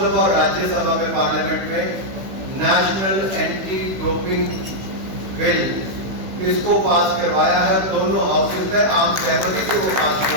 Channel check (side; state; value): left; late; 16 ms